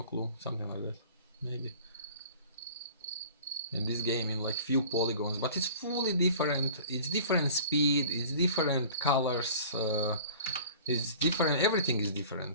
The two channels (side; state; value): both; inverted; correlation -0.44